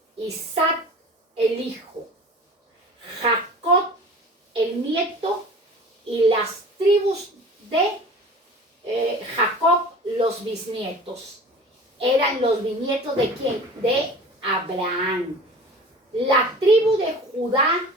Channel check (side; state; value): both; normal; correlation 0.40